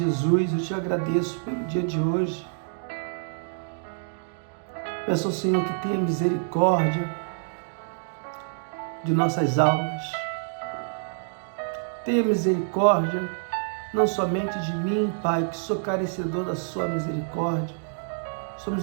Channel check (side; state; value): left; silent; digital silence